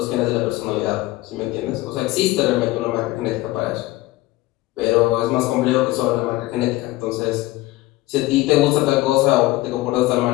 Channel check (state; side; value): quieter; right; 18.6 dB